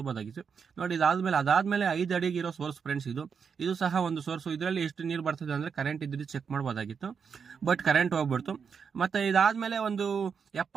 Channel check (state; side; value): quieter; left; 6.4 dB